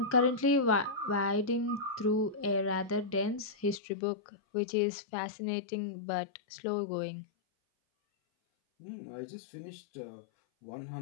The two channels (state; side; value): drops out; right; at 3.8 s